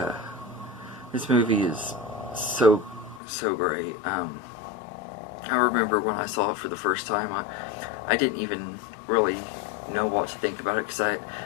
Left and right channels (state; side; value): drops out; right; at 3.2 s